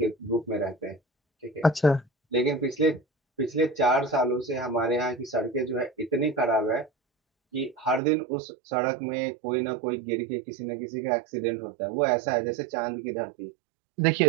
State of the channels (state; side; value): drops out; left; at 8.0 s